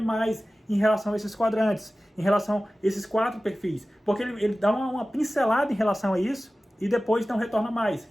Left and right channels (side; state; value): both; normal; correlation 0.96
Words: mais em relação a esses quadrantes, em relação a esses 4 perfis. Porque ele dá uma pincelada em relação a isso, e depois não retorna mais.